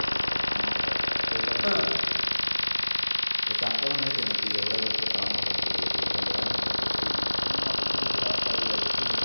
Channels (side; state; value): both; inverted; correlation -1.00